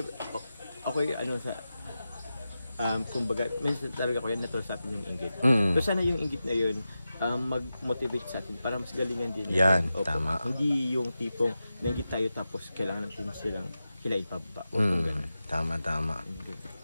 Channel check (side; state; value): both; inverted; correlation -0.92